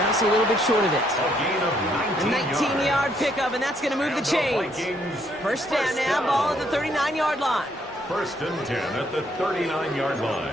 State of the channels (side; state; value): both; normal; correlation 0.70